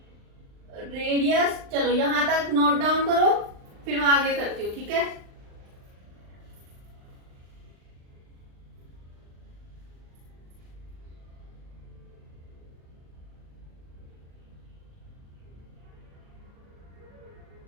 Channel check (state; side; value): late; left; 39 ms